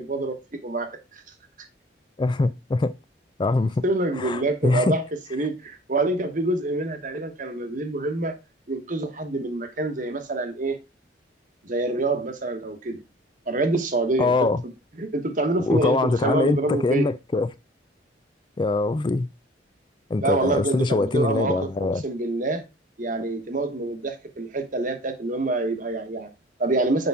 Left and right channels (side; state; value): both; normal; correlation 0.48